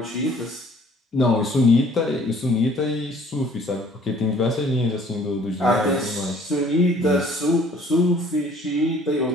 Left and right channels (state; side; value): normal; both; correlation 0.56